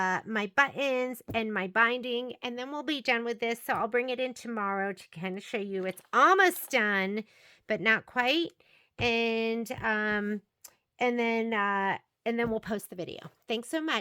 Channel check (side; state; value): both; identical; correlation 1.00